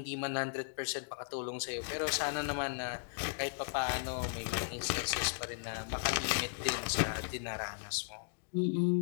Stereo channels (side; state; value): right; silent; digital silence